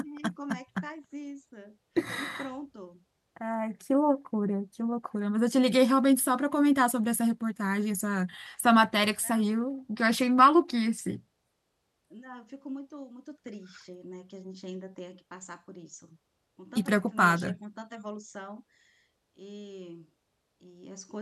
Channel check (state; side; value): identical; both; correlation 1.00